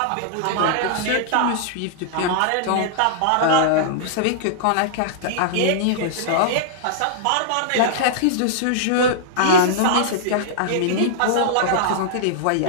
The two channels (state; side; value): different; both; correlation -0.02